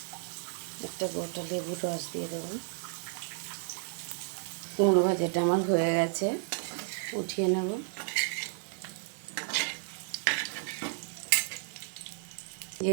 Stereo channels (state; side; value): silent; left; 56 dB below the other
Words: একটা গোটা লেবুর রস দিয়ে দেবো। কুমড়ো ভাজাটা আমার হয়ে গেছে, উঠিয়ে নেব।